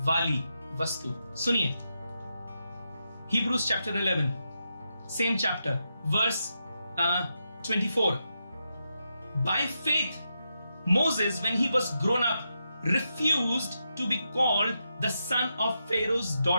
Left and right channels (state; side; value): inverted; both; correlation -0.85